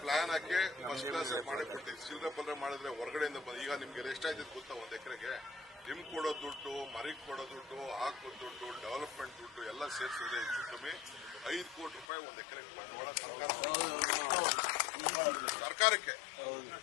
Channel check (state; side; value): drops out; right; at 12.1 s